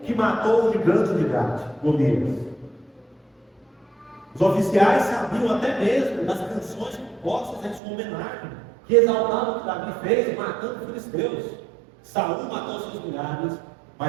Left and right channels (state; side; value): drops out; left; at 7.8 s